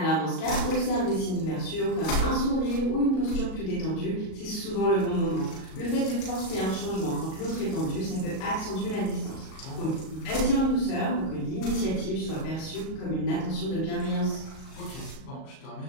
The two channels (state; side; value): late; right; 37 ms